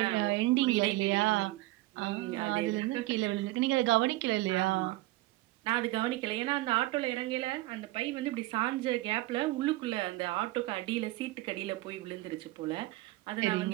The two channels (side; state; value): left; quieter; 18.8 dB